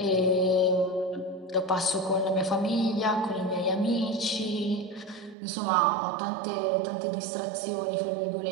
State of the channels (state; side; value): drops out; left; at 5.4 s